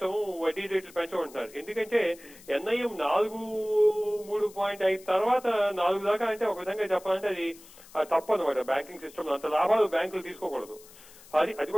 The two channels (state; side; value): noise; left; hiss, 22 dB below the sound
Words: వడ్డీ రేట్లు పెంచమంటున్నారు. ఎందుకంటే ఎన్ఐఎం 3.5 తర్వాత 4 దాకా అంటే ఒక విధంగా చెప్పాలంటే అది తప్పు అనమాట. బ్యాంకింగ్ సిస్టమ్ అంత లాభాలు బ్యాంకులు తీసుకోకూడదు. అది